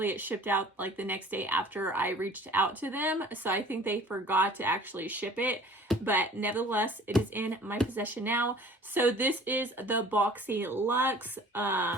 it shipped out like the next day after I reached out to them. So I think they forgot to actually ship it, but nevertheless, it is in my possession now. So this is the Boxyluxe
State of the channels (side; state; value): both; normal; correlation 0.48